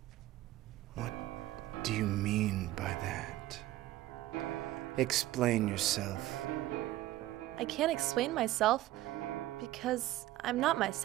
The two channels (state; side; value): quieter; left; 15.5 dB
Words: What do you mean by that? Explain yourself. I can't explain myself because I'm not